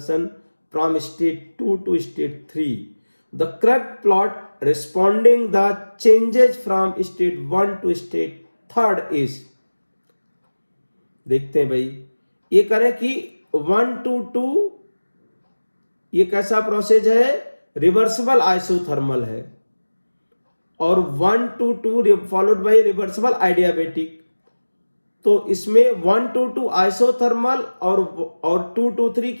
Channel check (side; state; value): both; inverted; correlation -1.00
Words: from state 2 to state 3. The correct plot responding the changes from state 1 to state 3rd is, देखते हैं भाई ये करें कि 1 to 2 ये कैसा process है, reversible isothermal है, और 1 to 2 फॉलोड बाय रिवर्सिबल आइडियाबेटिक। तो इसमें 1 to 2 आइसोथर्मल और 2 to 3